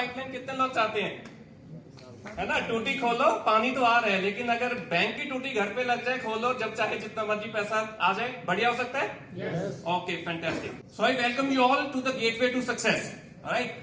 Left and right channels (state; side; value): identical; both; correlation 1.00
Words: कितने लोग चाहते हैं, है ना। टूटी खोलो पानी तो आ रहा है, लेकिन अगर बैंक की टूटी घर पे लग जाए, खोलो जब चाहे जितना मर्जी पैसा आ जाए, बढ़िया हो सकता है। Okay, fantastic. So I welcome you all to the gateway to success. Right,